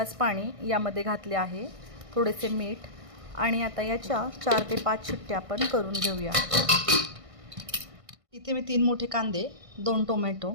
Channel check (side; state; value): left; late; 1.6 ms